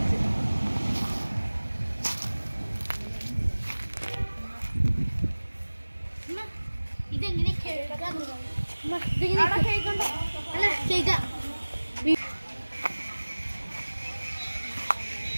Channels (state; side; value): inverted; both; correlation -1.00